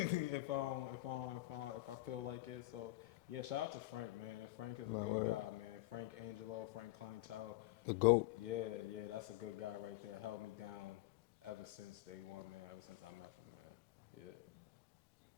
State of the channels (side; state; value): right; quieter; 18.4 dB